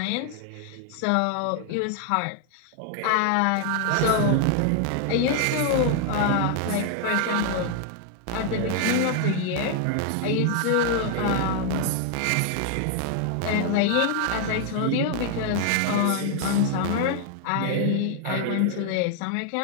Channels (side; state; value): both; different; correlation 0.00